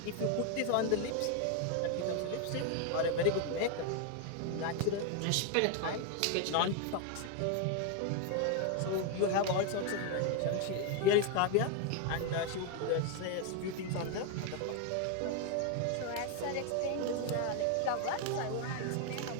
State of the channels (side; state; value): both; different; correlation 0.01